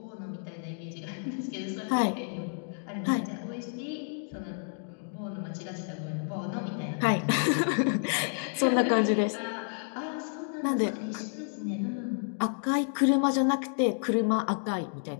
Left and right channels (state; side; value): silent; right; 58 dB below the other